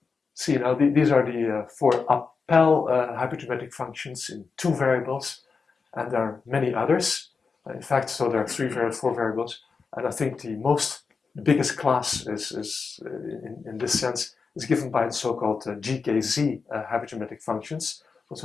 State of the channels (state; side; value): quieter; right; 5.0 dB